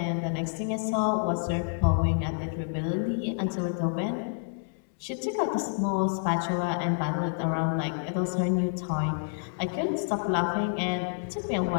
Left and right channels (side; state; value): right; silent; digital silence